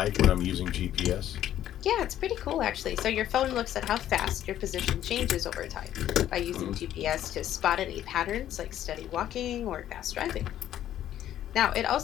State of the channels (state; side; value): quieter; right; 11.8 dB